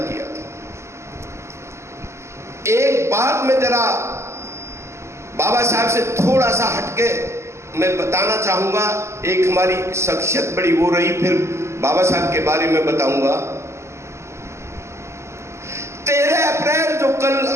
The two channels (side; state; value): left; late; 0.13 ms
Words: था। एक बात मैं जरा बाबा साहब से थोड़ा सा हटके मैं बताना चाहूंगा। एक हमारी शख्सियत बड़ी वो रही, फिर बाबा साहब के बारे में बताऊंगा। 13 अप्रैल जो कल